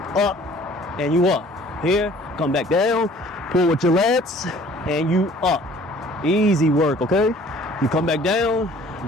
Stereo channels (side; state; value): both; normal; correlation 0.53